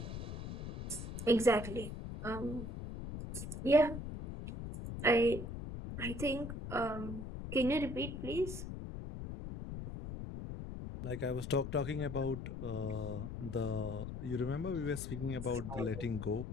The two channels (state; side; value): noise; left; rumble, 7 dB below the sound